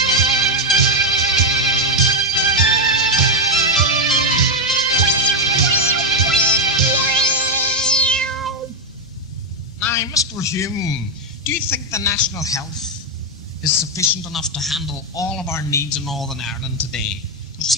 Now, Mr. Hume, do you think the National Health is sufficient enough to handle all of our needs in Northern Ireland today? There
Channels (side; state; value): both; normal; correlation 0.04